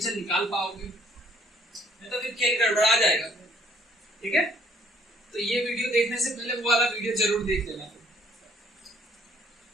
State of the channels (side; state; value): both; normal; correlation 0.63